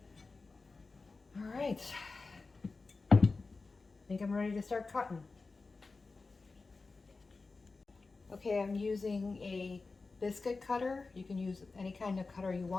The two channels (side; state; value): right; quieter; 3.9 dB